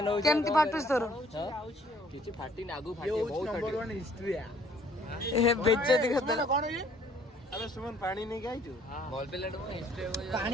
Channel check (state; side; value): normal; both; correlation 0.59